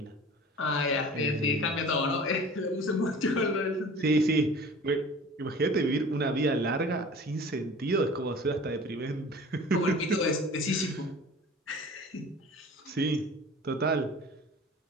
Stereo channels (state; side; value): normal; both; correlation 0.43